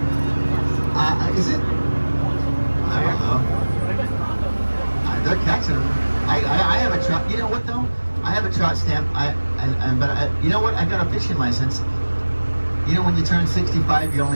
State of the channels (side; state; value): both; inverted; correlation -1.00